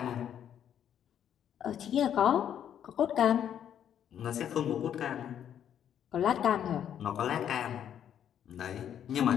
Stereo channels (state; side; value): quieter; right; 9.6 dB